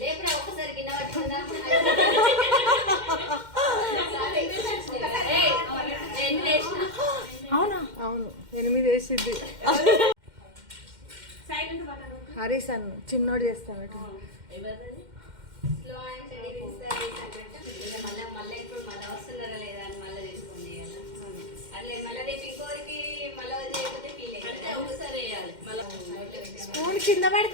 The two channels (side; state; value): left; late; 2.1 ms